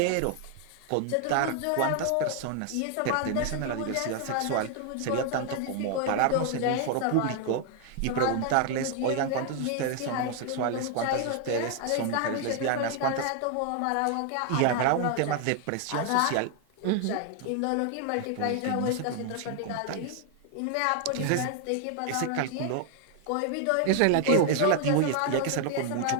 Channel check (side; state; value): both; different; correlation 0.00